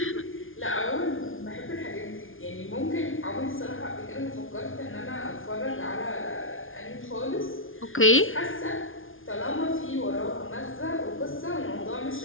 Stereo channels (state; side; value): late; right; 0.59 ms